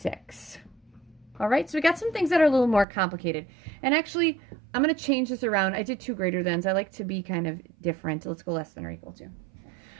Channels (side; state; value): left; drops out; at 2.9 s